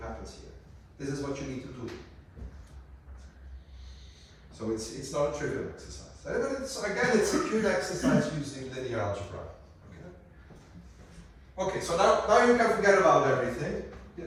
happens here. This is what you need to do. So it's not a trivial exercise. Again, it's a cute exercise using linear algebra. Okay, so now you can forget about everything.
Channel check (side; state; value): both; identical; correlation 1.00